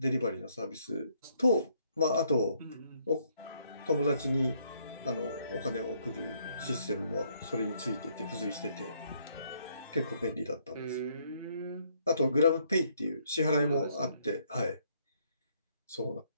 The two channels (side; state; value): both; inverted; correlation -0.69